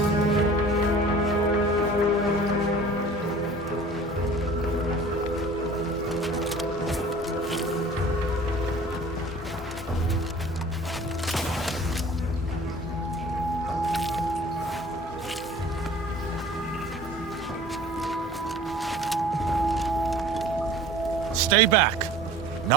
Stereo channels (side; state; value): both; normal; correlation 0.45